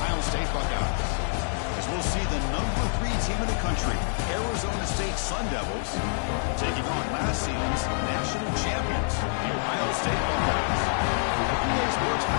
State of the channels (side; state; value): right; silent; 60 dB below the other